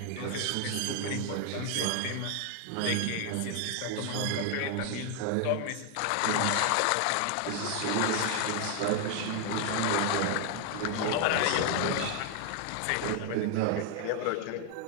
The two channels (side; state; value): both; different; correlation 0.00